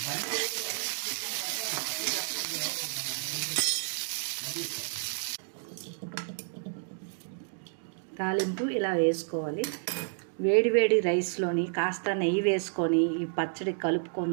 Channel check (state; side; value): silent; left; digital silence